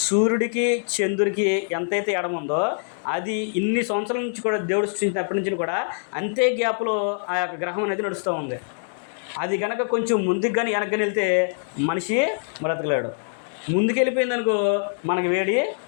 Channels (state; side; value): silent; right; digital silence